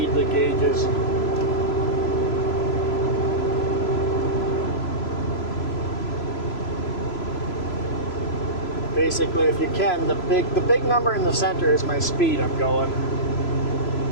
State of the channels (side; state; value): right; late; 3.0 ms